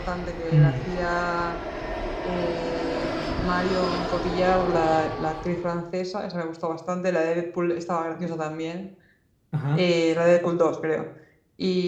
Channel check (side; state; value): both; identical; correlation 1.00